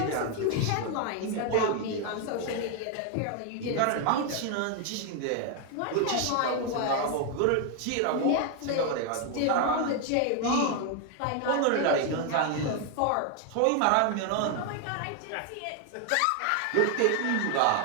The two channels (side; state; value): both; different; correlation 0.01